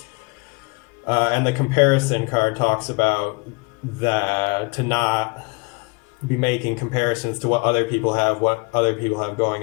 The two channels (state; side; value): quieter; right; 30.0 dB